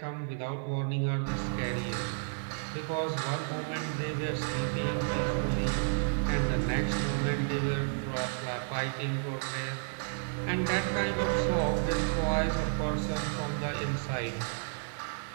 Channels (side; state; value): left; silent; digital silence